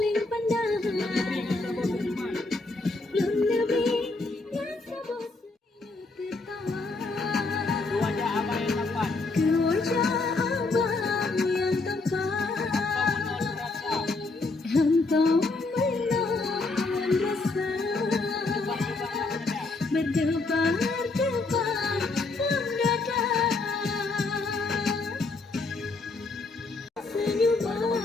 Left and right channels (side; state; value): right; quieter; 3.5 dB